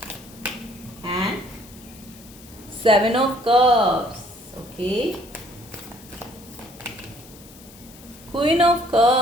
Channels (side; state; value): left; noise; hiss, 21 dB below the sound